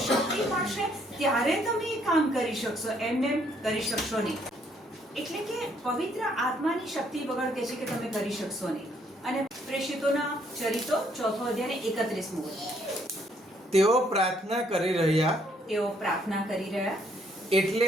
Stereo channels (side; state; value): both; normal; correlation 0.68